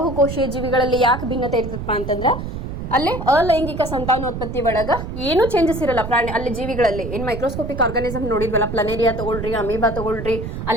ಜೀವಿಗಳಲ್ಲಿ ಯಾಕೆ ಭಿನ್ನತೆ ಇರ್ತದಪ್ಪ ಅಂತಂದ್ರೆ, ಅಲ್ಲಿ ಅಲೈಂಗಿಕ ಸಂತಾನೋತ್ಪತ್ತಿ ಒಳಗ ಏನು ಚೇಂಜಸ್ ಇರಲ್ಲ ಪ್ರಾಣಿ ಅಲ್ಲಿ ಜೀವಿಗಳಲ್ಲಿ. ಏನು ಮೈಕ್ರೋಸ್ಕೋಪಿಕ್ ಆರ್ಗಾನಿಸಮ್ ನೋಡಿದ್ವಲ್ಲ, ಪ್ಲನೇರಿಯಾ ತಗೊಳ್ರಿ, ಅಮೀಬಾ ತಗೊಳ್ರಿ,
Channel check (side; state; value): right; noise; rumble, 7 dB below the sound